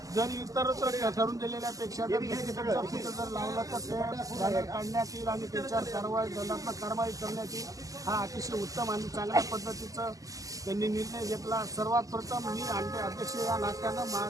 इतरत्र ठरवून दिलेल्यापेक्षा जर जर लावलं तर ते बॅनर काढण्यात येईल आणि त्याच्यावर दंडात्मक कारवाई करण्यात येईल। हा अतिशय उत्तम आणि चांगल्या पद्धतीचं त्यांनी निर्णय घेतला। सर्वात प्रथम मी अध्यक्ष या नात्यानं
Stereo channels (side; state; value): left; late; 0.17 ms